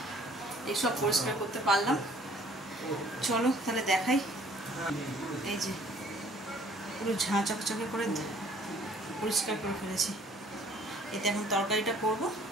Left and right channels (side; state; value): both; normal; correlation 0.57